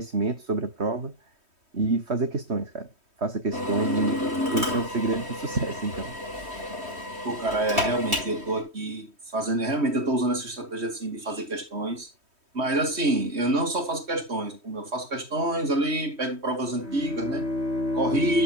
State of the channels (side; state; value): left; late; 3.2 ms